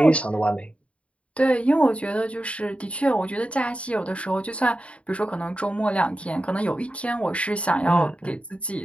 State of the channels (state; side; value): late; right; 0.062 ms